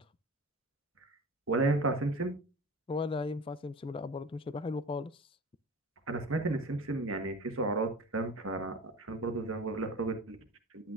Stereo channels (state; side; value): normal; both; correlation 0.36